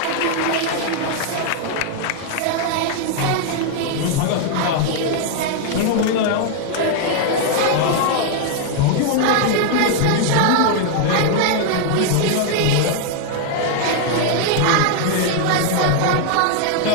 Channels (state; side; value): different; both; correlation 0.00